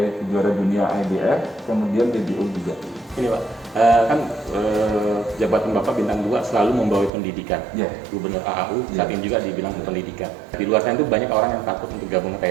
juara dunia IBF, kemudian WBO juga. Ini Pak, kan jabatan Bapak bintang 2 selalu membawa pendidikan. Yeah. Gubernur AAU saat Yeah. ini juga dibilang pendidikan. Di luar sana itu banyak orang yang takut untuk gabung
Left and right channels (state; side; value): drops out; left; at 7.1 s